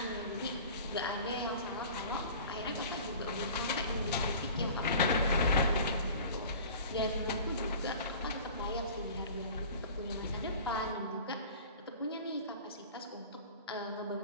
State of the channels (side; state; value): both; inverted; correlation -0.42